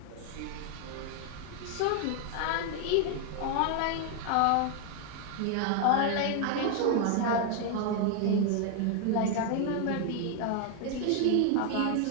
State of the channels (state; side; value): different; both; correlation 0.01